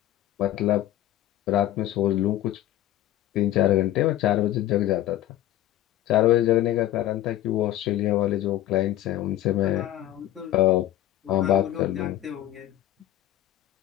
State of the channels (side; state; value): right; quieter; 13.7 dB